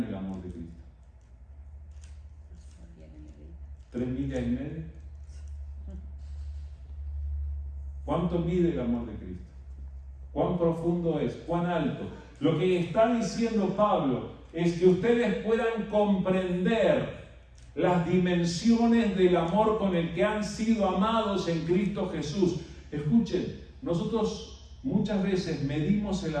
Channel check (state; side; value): identical; both; correlation 1.00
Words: el amor de Cristo? 3 millas y media. ¿Cuánto mide el amor de Cristo? ¿Cuán profundo es? ¿Cuán alto? Lo que está diciendo Pablo es que ustedes puedan comprender las dimensiones del amor con el que han sido amados en Cristo Jesús. Escuchen, nosotros muchas veces medimos el